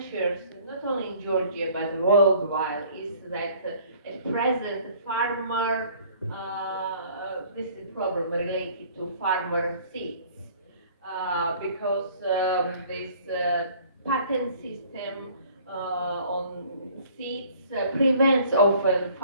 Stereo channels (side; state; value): both; inverted; correlation -0.54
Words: not only in Georgia but worldwide, is that at present farmer, this is a problem related to farmer seeds, because this patent system on seeds prevents often